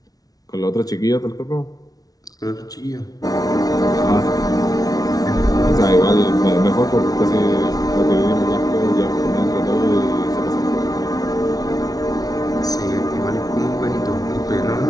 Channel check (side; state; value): right; late; 0.18 ms